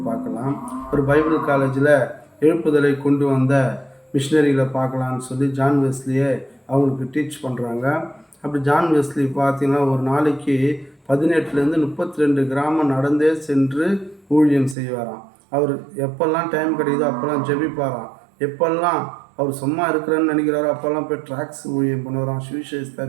பார்க்கலாம். ஒரு பைபிள் காலேஜில் எழுப்புதலை கொண்டு வந்த மிஷினரிகளை பார்க்கலான்னு சொல்லி ஜான் வெஸ்லியை அவங்களுக்கு டீச் பண்ணுறாங்க. அப்படி ஜான் வெஸ்லி பார்த்தீங்கன்னா ஒரு நாளைக்கு 18லேருந்து 32 கிராமம் நடந்தே சென்று ஊழியம் செய்வாராம். அவர் எப்பெல்லாம் டைம் கிடைக்குதோ அப்போல்லாம் ஜெபிப்பாராம். எப்பெல்லாம் அவர் சும்மா இருக்கிறேன்னு நினைக்கிறாரோ அப்போல்லாம் போய் ட்ராக்ஸ் ஊழியம் பண்ணுவாராம், சுவிசேஷத்தை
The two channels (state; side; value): drops out; left; at 14.8 s